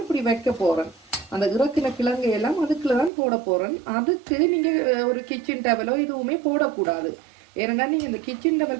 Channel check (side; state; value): left; drops out; at 3.1 s